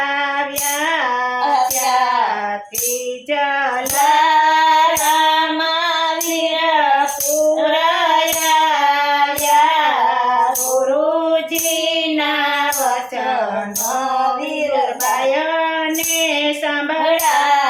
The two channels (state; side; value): identical; both; correlation 1.00